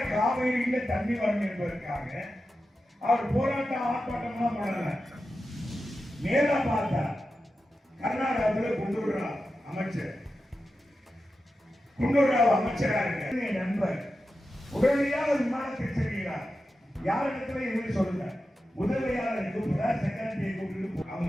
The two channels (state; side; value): normal; both; correlation 0.91